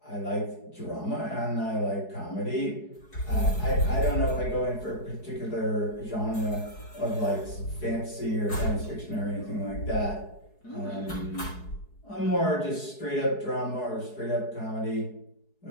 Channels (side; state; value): right; late; 4.7 ms